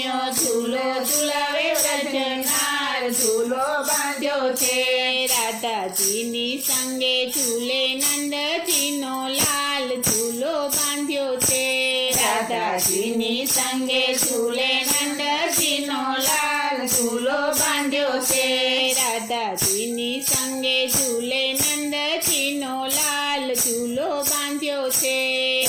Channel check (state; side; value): identical; both; correlation 1.00